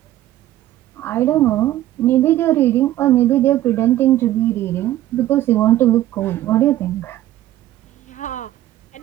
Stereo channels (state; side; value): quieter; left; 14.2 dB